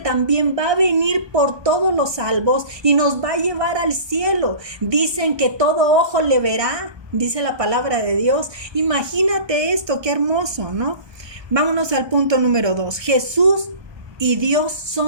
va a venir por todos los salvos y nos va a llevar al cielo. Dicen que todo ojo le verá, dice la palabra de Dios. Imagínate esto, qué hermoso, ¿no? Vámonos al punto número 2. Jesús y Dios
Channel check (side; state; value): left; late; 1.2 ms